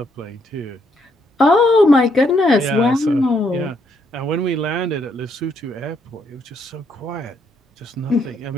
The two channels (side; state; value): both; normal; correlation 0.73